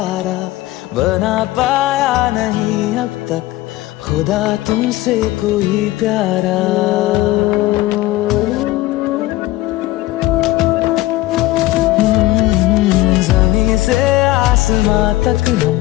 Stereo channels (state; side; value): quieter; right; 17.2 dB